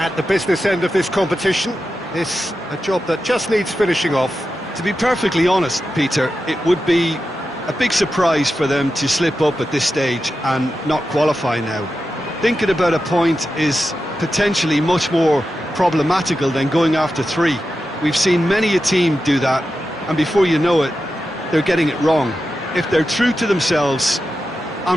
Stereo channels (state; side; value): normal; both; correlation 0.91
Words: the business end of this competition. This a job that just needs finishing off. To be perfectly honest, Peter, it would be a big surprise for them to slip up at this stage and not qualify now. Thinking about a point is potentially much more problematical than going after 3. We've seen many a team do that, and before you know it, they're getting it wrong. If they're true to themselves,